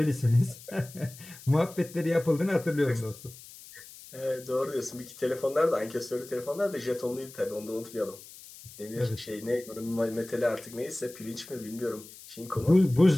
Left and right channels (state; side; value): noise; left; hiss, 18 dB below the sound